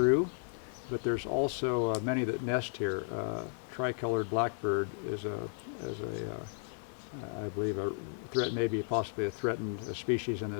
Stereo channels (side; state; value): right; silent; 55 dB below the other